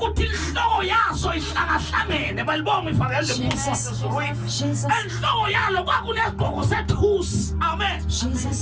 inhloko yaso ihlangahlangene balibonga ifakele Jesus. Jesus. enhloko yalo kwakunesigqoko sethusi. Amen.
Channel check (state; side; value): identical; both; correlation 1.00